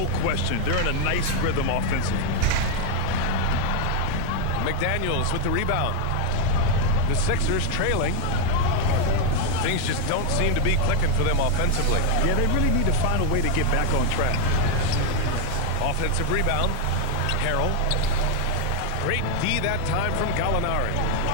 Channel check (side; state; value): both; different; correlation 0.00